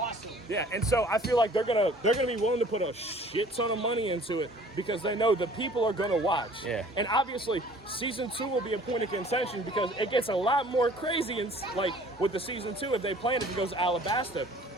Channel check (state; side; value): normal; both; correlation 0.51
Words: Yeah, and so I feel like they're gonna be willing to put a shit ton of money into it because they know the people are gonna watch. Yeah. And obviously, season 2 will be a point of contention because it gets a lot more crazy and like with the season 2 if they plan it goes to Alabasta.